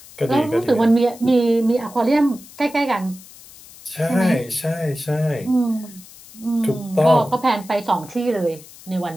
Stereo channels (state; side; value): noise; left; hiss, 20 dB below the sound